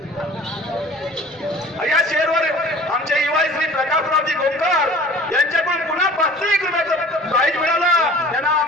या शेरवर आमचे युवा श्री प्रकाशरावजी गोमकर यांच्याकडून पुन्हा 500 रुपयाचं प्राईज मिळालं। त्यांना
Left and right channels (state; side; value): normal; both; correlation 0.45